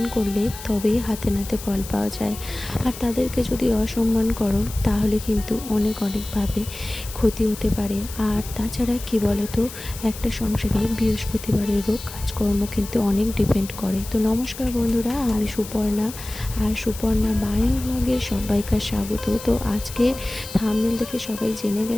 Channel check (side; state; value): left; noise; hiss, 13 dB below the sound